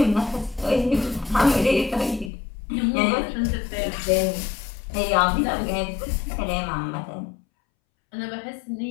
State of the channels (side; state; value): right; drops out; at 2.3 s